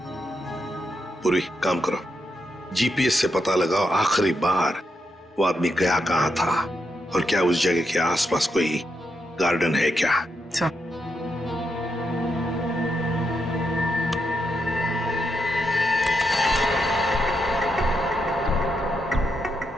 पूरी काम करो, जीपीएस से पता लगाओ आखिरी बार वो आदमी गया कहाँ था और क्या उस जगह के आसपास कोई गार्डन है क्या?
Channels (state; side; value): normal; both; correlation 0.82